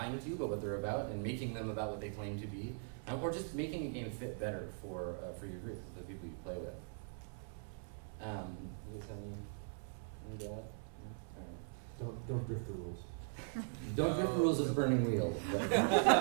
to you about what they're about and making them about what they claim to be, or just making a game fit better for your group, the people you play with. Any doubt? Don't drift the rules. Don't drift the rules of Burning Wheel.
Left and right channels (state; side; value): silent; left; 51 dB below the other